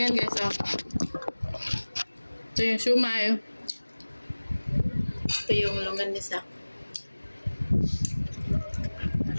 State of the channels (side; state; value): both; inverted; correlation -1.00